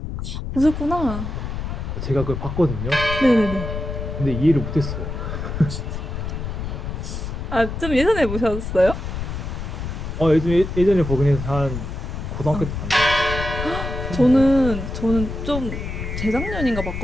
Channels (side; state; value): left; noise; rumble, 5 dB below the sound